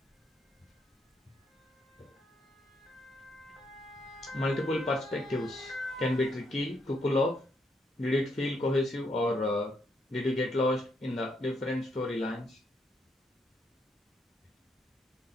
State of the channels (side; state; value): both; normal; correlation 0.76